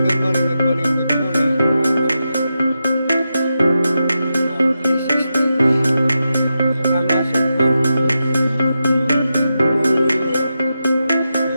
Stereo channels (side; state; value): both; inverted; correlation -0.89